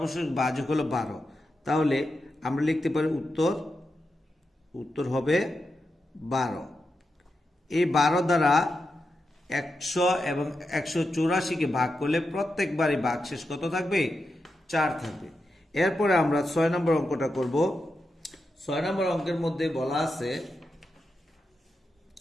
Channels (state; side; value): normal; both; correlation 0.88